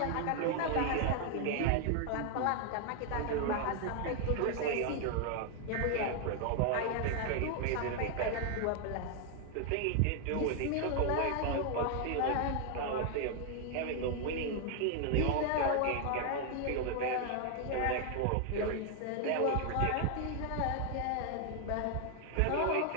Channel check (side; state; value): both; different; correlation 0.00